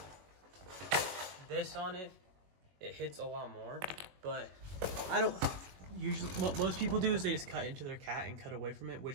this on it, it hits a lot more. But I don't usually, what most people do is they just cut into their cat and cut away from it,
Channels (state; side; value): late; left; 21 ms